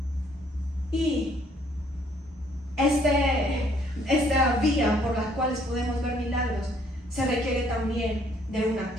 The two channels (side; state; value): both; normal; correlation 0.64